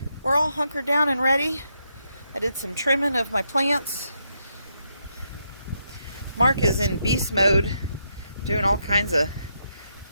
we're all hunkered down and ready. I did some trimming of my plants. Mark is in beast mode, doing all kinds of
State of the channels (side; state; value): both; inverted; correlation -0.81